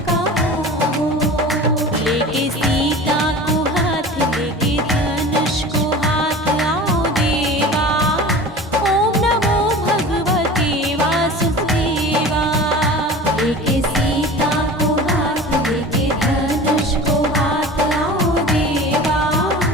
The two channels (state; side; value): normal; both; correlation 0.37